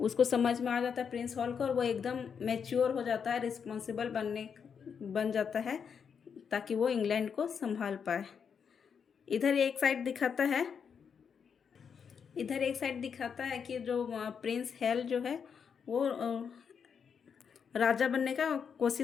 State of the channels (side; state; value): right; quieter; 6.8 dB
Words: समझ में आ जाता है प्रिंस हॉल को, और वो एकदम मैच्योर हो जाता है, रिस्पॉन्सिबल बन जाता है ताकि वो इंग्लैंड को संभाल पाए। इधर एक साइड दिखाता है कि जो प्रिंस हेल जो है वो राजा बनने का